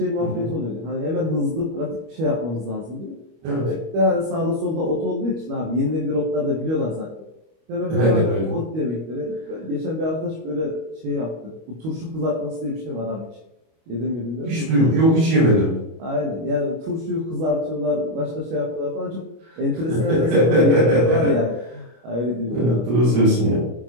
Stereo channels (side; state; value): left; late; 25 ms